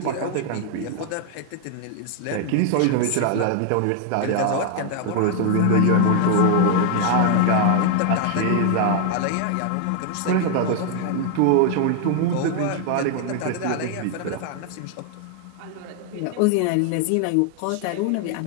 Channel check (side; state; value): both; different; correlation 0.00